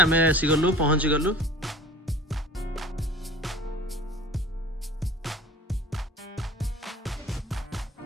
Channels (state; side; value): normal; both; correlation 0.44